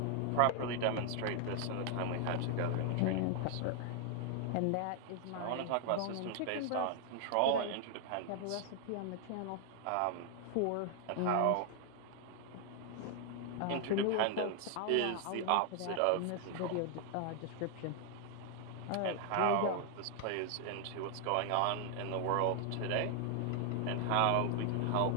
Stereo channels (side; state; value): both; different; correlation 0.00